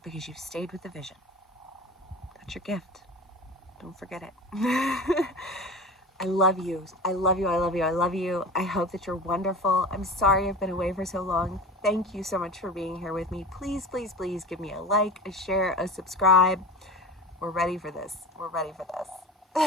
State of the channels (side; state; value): both; normal; correlation 0.33